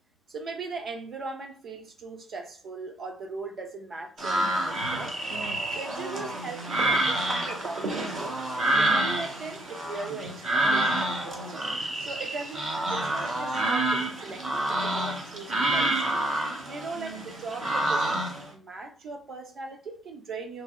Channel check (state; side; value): normal; both; correlation 0.71